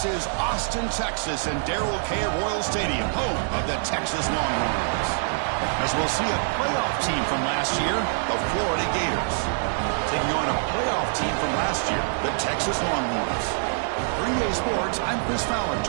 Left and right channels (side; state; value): left; silent; digital silence